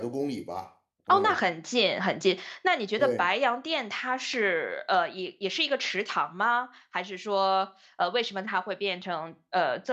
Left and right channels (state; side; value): identical; both; correlation 1.00